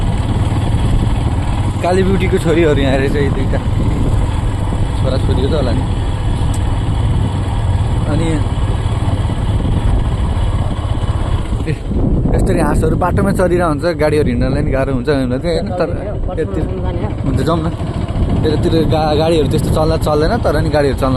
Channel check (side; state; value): both; identical; correlation 1.00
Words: काली ब्युटीको छोरीहरू यहाँ रहेछ यी दुईवटा छोराछोरी हो त होला नि अनि यसरी हाँसहरू बाटोमा चलिरहेको हुन्छ गाडीहरू हिँड्नलाई नि गाह्रो हुन्छ होइन तर यतातिर हुन्छ जाउँ न यतातिर गाडीहरू त्यस्तो चल्दैन तर नि गाडीहरू चल्न